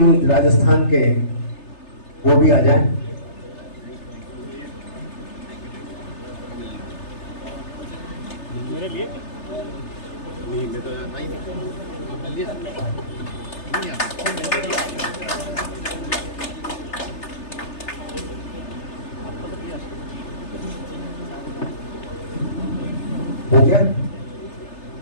राजस्थान के, वो भी आ जाएं। मेरे लिए नहीं, मैं तो आता ही नहीं। आपने लिया नहीं हो गया।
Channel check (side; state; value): right; late; 3.3 ms